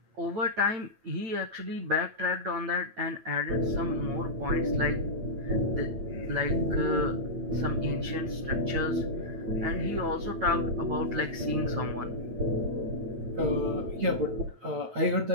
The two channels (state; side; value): late; left; 9.1 ms